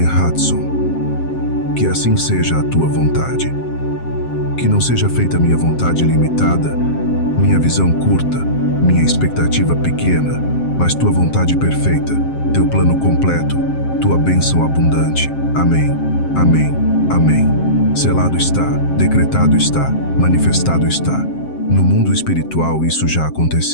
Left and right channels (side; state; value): right; late; 7.6 ms